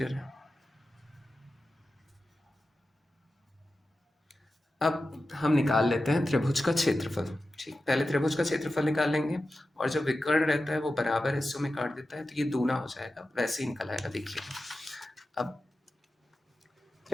है। अब हम निकाल लेते हैं त्रिभुज का क्षेत्रफल, ठीक। पहले त्रिभुज का क्षेत्रफल निकाल लेंगे और जो विकर्ण रहता है वो बराबर हिस्सों में काट देता है तो ये दूना हो जाएगा, वैसे ही निकल आएगा। देखिए अब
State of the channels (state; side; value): normal; both; correlation 0.93